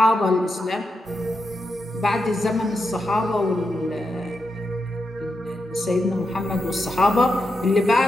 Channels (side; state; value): both; normal; correlation 0.86